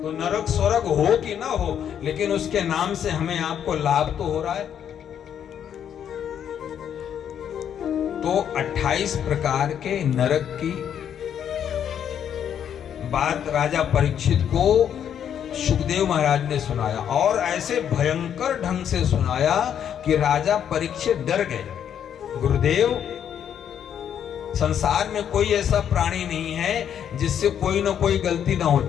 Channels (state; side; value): quieter; right; 9.0 dB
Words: तो नरक स्वर्ग हो कि ना हो, लेकिन उसके नाम से हमें आपको लाभ तो हो रहा है। तो 28 प्रकार के नरक की बात राजा परीक्षित को सुखदेव महाराज ने सुनाया, और ऐसे भयंकर ढंग से सुनाया कि राजा परीक्षित डर गए। गुरुदेव, संसार में कोई ऐसा प्राणी नहीं है जिससे कोई ना कोई गलती ना